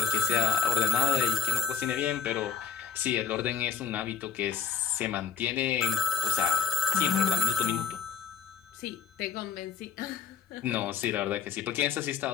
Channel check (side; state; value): right; quieter; 6.9 dB